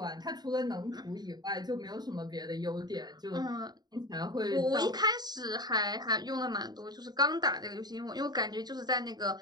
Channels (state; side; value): late; left; 0.20 ms